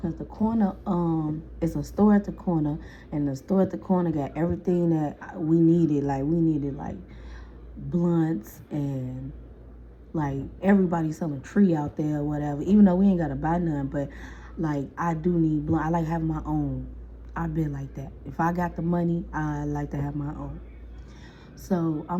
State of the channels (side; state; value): both; identical; correlation 1.00